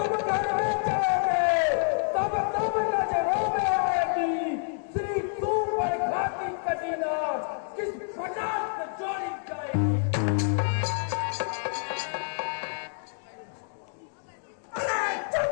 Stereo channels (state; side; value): silent; right; digital silence